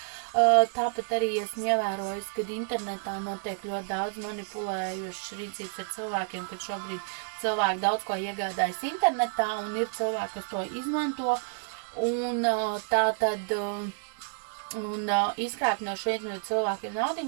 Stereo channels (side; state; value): left; silent; digital silence